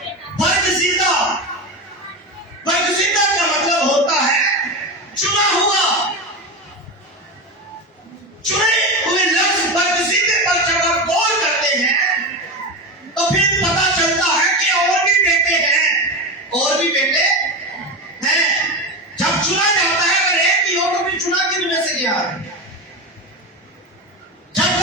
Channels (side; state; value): both; normal; correlation 0.20